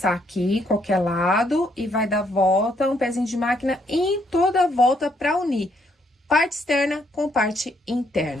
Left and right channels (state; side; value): normal; both; correlation 0.71